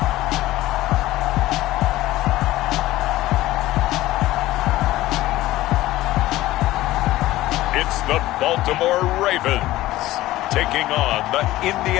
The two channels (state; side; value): quieter; right; 16.3 dB